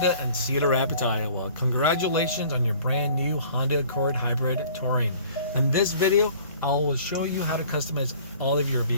in Cedar Rapids, Iowa. Congratulations on your brand new Honda Accord Hybrid Touring. In this video, I will show you how to customize all of your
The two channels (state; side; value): inverted; both; correlation -0.51